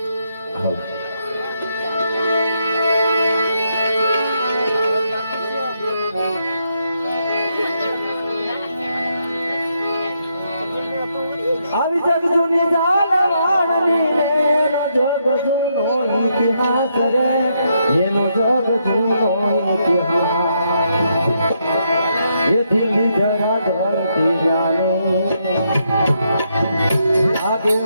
હાલ આવી જગ જૂની જાલવાણની એનો જગ જૂનો ઇતિહાસ રે, એનો જગ જૂનો ઇતિહાસ. એ દિલ્હી જરા ધરતી જાને આગે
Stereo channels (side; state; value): both; inverted; correlation -0.78